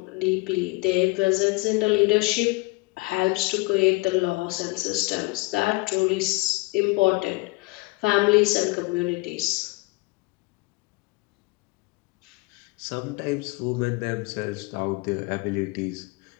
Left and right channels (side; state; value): right; quieter; 24.7 dB